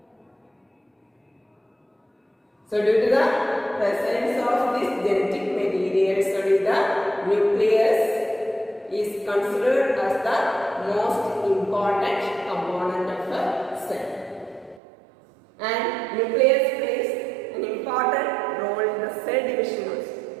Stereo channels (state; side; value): drops out; left; at 14.8 s